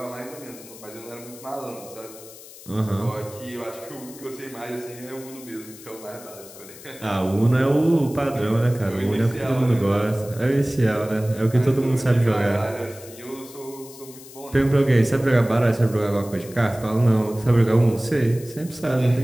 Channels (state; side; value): noise; left; hiss, 18 dB below the sound